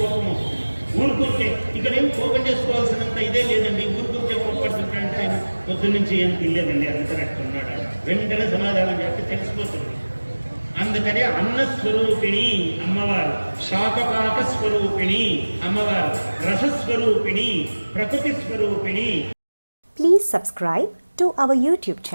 వస్తుంది. ఊరుకుంటే ఇక్కడేం కోపం చేసుకోవాల్సినంత ఇదే లేదండి. ఊరుకుంటే కోపడుతుంటాడంటే ఆయన పొద్దున్నుంచి ఏం తినలేదండి, అందుకనట్టు ఉన్నాడు. వెంటనే సమాధానం చేస్తే తెలిసిపోతుంది. అందుకని అన్నస్వరూపిణి అమ్మవారు, శాకపాక స్వరూపిణి అమ్మవారు, రసస్వరూపిణి, ప్రకృతి స్వరూపిణి. Please subscribe to our YouTube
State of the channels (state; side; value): inverted; both; correlation -1.00